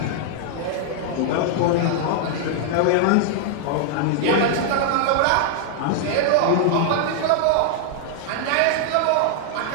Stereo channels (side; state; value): both; different; correlation -0.01